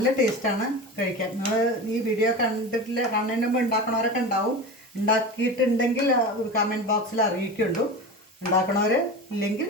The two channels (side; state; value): both; normal; correlation 0.28